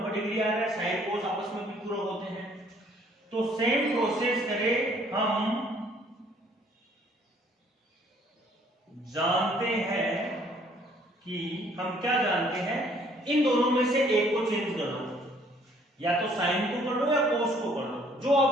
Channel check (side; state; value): both; normal; correlation 0.61